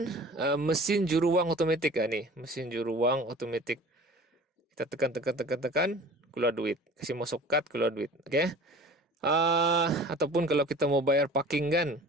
mesin juru wang otomatis nih, mesin juru wang otomatis. Kita tekan, keluar duit. Kasih masuk kad, keluar duit. Oke. Ataupun kalau kita mau bayar parking kan,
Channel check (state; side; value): normal; both; correlation 0.42